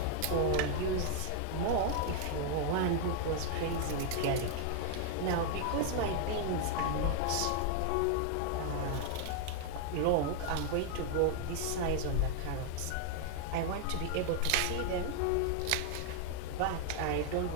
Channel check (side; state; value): both; different; correlation 0.00